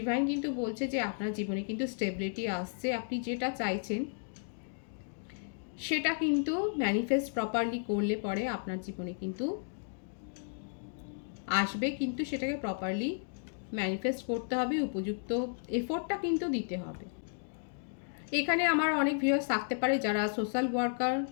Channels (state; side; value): silent; right; digital silence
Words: কিন্তু বলছে যে আপনার জীবনে কিন্তু স্টেবিলিটি আসছে, আপনি যেটা চাইছেন সেটা কিন্তু ম্যানিফেস্ট প্রপারলি করলে পরে আপনার জীবনে কিন্তু আসবে, কিন্তু সেটাকে প্রপারলি ম্যানিফেস্ট করতে হবে, উপযুক্ত এফোর্টটা কিন্তু দিতে হবে। এখানে আমার অনেক ভিউয়ার্স থাকতে পারে যারা সোশ্যাল ওয়ার্কার,